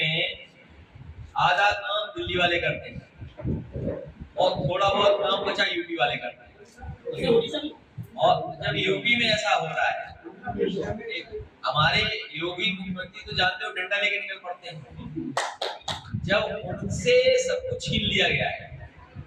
आधा काम दिल्ली वाले करते हैं और थोड़ा बहुत काम बचा यूपी वाले करते हैं। और जब यूपी में ऐसा हो रहा है, हमारे योगी मुख्यमंत्री तो जानते हो डंडा लेके निकल पड़ते हैं। जब उनसे सब कुछ छीन लिया गया है,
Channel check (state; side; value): identical; both; correlation 1.00